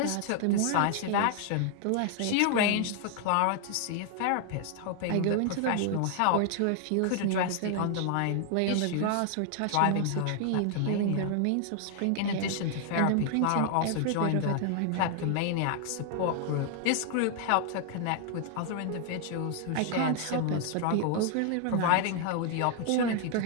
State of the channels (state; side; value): different; both; correlation 0.00